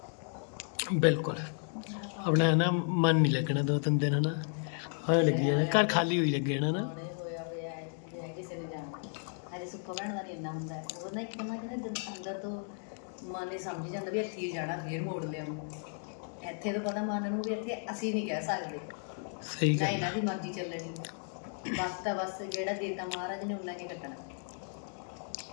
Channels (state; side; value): silent; right; 55 dB below the other